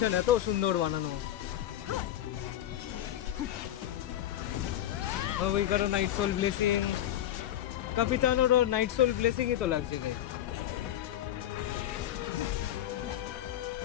এত সুন্দর বানানো মাভুইকারও নাইট সোল ব্লেসিং ক্যাপিটানোরও নাইট সোল ব্লেসিংই তো লাগছে না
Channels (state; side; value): quieter; right; 12.1 dB